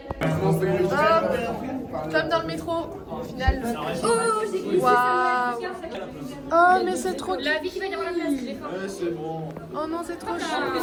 Comme dans le métro, au final. Waouh. Oh mais c'est trop cute. La vie qui va y avoir la place. C'est bon. Oh non c'est trop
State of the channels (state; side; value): identical; both; correlation 1.00